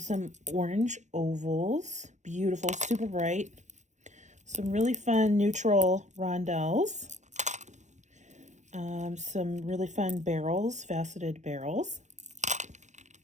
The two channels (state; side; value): late; left; 0.34 ms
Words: orange ovals. Beautiful, super bright. Some really fun neutral rondelles. Some really fun barrels, faceted barrels.